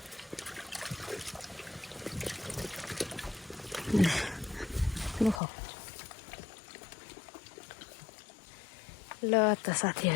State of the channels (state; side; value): drops out; right; at 5.4 s